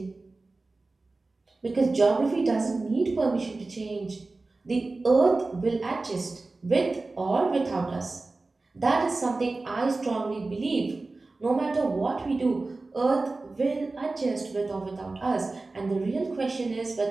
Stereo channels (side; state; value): left; quieter; 3.4 dB